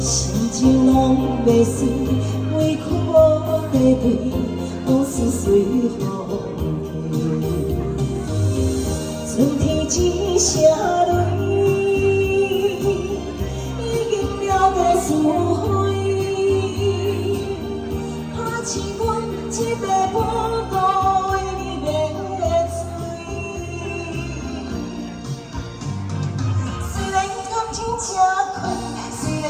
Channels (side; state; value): both; identical; correlation 1.00